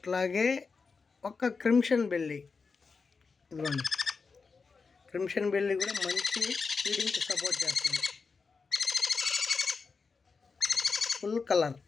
ఒక క్రిమ్షన్ బెల్లి, ఇదిగోండి క్రిమ్షన్ బెల్లి కూడా మంచి ఫీడింగ్కి సపోర్ట్ చేస్తుంది. Full colour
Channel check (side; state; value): right; quieter; 4.8 dB